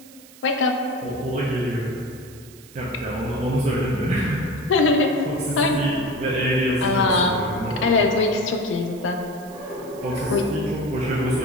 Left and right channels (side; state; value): right; noise; hiss, 22 dB below the sound